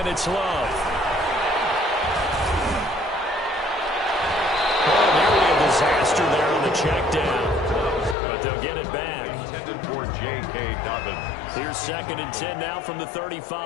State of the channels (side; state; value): right; drops out; at 8.2 s